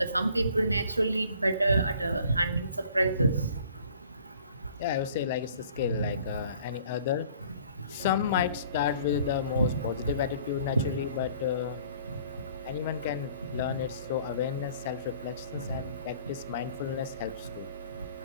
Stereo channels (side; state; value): both; inverted; correlation -0.55